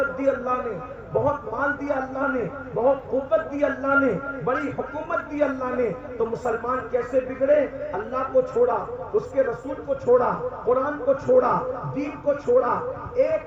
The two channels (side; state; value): both; identical; correlation 1.00